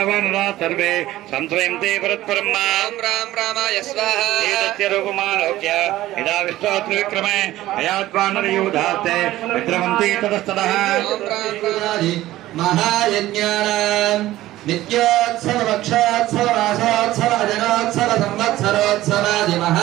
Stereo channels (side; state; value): left; quieter; 15.5 dB